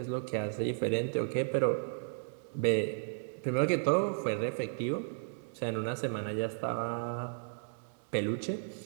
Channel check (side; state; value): left; silent; digital silence